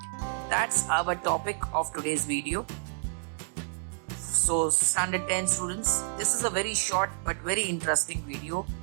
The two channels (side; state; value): left; silent; digital silence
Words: That's our topic of today's video. So standard 10 students, this is a very short but very interesting video